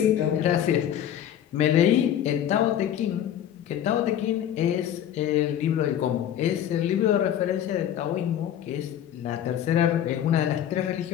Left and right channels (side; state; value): right; quieter; 10.4 dB